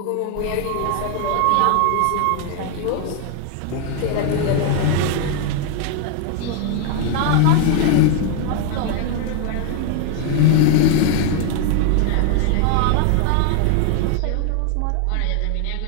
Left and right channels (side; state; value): both; different; correlation 0.00